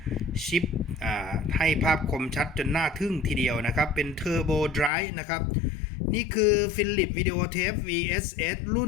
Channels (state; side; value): drops out; right; at 4.9 s